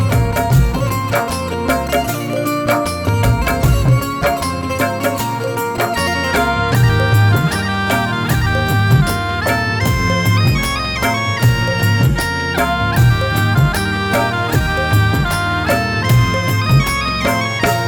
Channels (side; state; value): both; identical; correlation 1.00